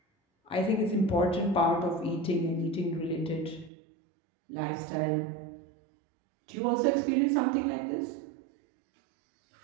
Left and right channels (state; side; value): drops out; left; at 3.7 s